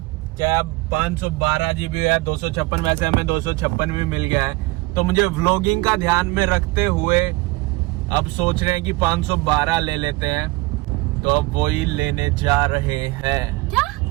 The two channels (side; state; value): left; quieter; 22.4 dB